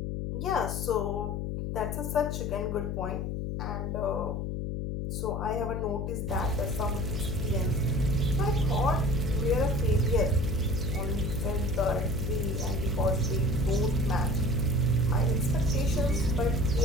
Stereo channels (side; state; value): left; noise; hum, 2 dB below the sound